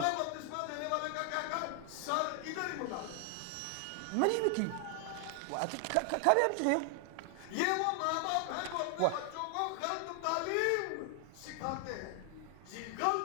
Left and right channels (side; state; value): both; different; correlation 0.00